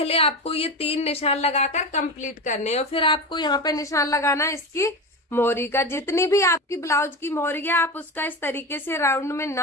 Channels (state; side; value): normal; both; correlation 0.23